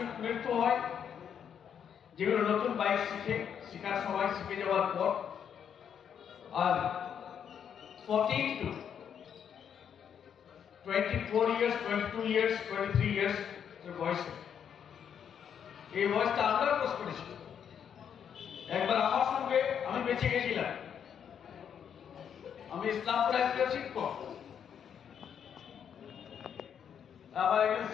মৃত্যু হয়? যেগুলো নতুন বাইক শেখার সময় শিখে যাওয়ার পর, আর 14 to 24 years, 22 years, 23 years বয়সে, এই বয়সটা আমরা ক্রস করেছি। একবার আমার সঙ্গে আমি বেঁচে গেছিলাম, আমি ইসলামপুর একজন শিক্ষক, আমার একজন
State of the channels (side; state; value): right; quieter; 8.2 dB